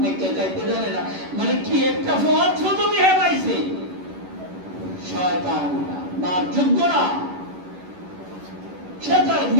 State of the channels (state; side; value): late; left; 11 ms